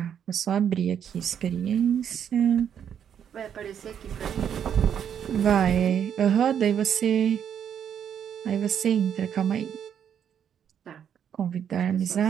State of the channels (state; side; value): quieter; left; 8.7 dB